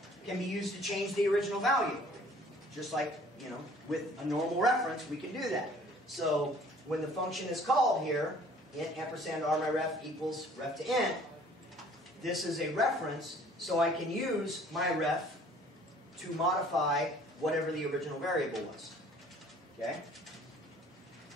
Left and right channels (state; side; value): normal; both; correlation 0.54